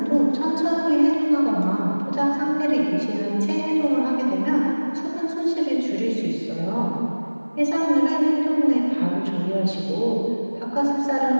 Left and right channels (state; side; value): inverted; both; correlation -1.00